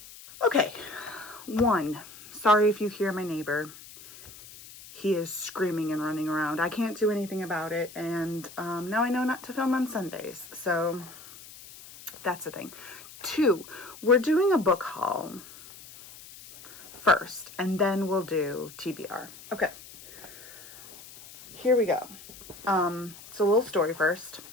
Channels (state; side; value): noise; left; hiss, 18 dB below the sound